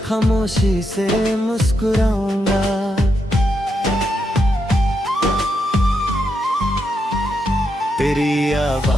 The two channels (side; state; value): both; normal; correlation 0.82